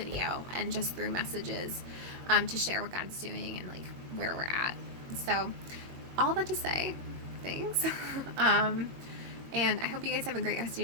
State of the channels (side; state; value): left; late; 22 ms